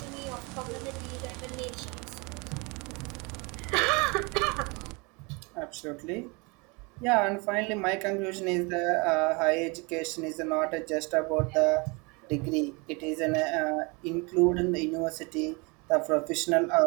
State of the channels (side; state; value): left; quieter; 28.8 dB